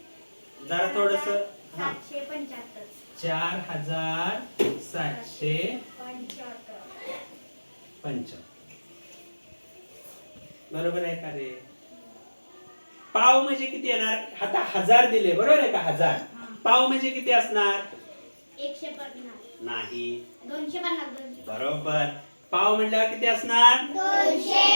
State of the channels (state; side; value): inverted; both; correlation -1.00